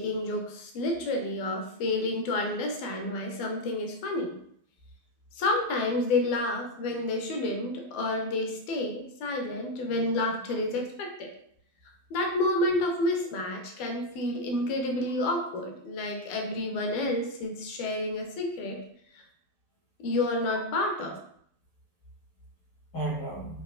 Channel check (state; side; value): late; right; 12 ms